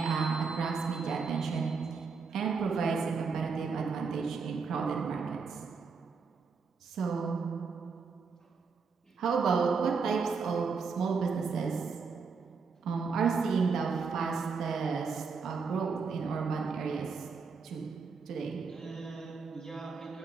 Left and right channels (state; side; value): quieter; left; 5.2 dB